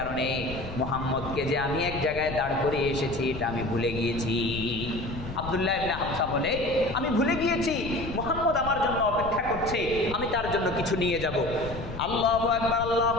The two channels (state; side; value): noise; left; rumble, 10 dB below the sound